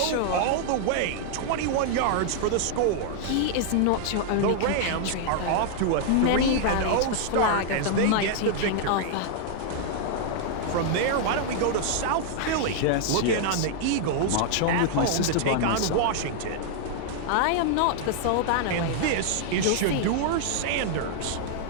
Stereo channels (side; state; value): both; different; correlation -0.01